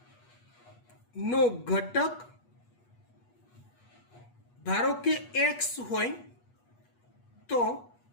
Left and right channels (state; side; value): late; right; 8.3 ms